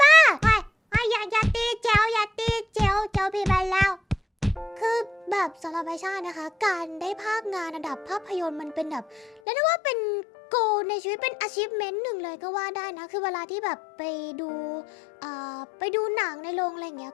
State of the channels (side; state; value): right; drops out; at 9.4 s